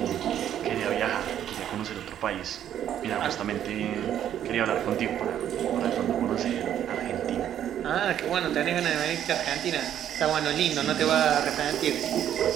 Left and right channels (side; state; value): left; quieter; 10.5 dB